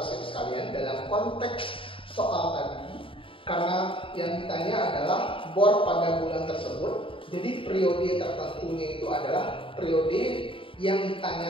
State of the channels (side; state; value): right; late; 0.25 ms